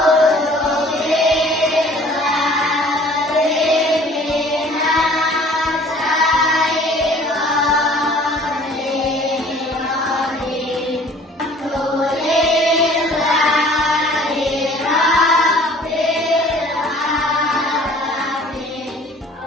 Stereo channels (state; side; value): normal; both; correlation 0.51